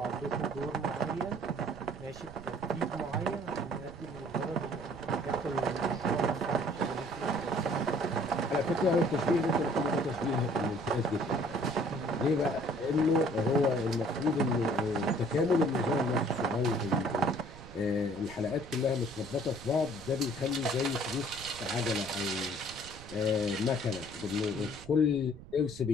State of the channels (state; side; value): noise; right; rumble, 17 dB below the sound